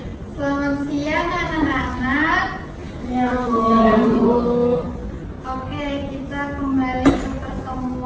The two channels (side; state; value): both; identical; correlation 1.00